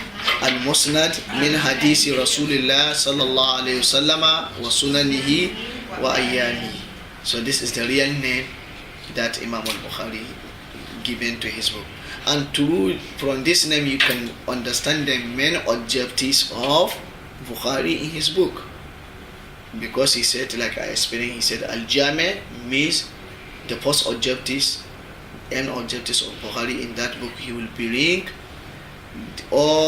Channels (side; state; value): both; identical; correlation 1.00